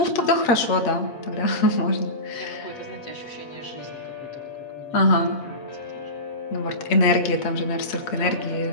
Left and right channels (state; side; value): late; right; 8.6 ms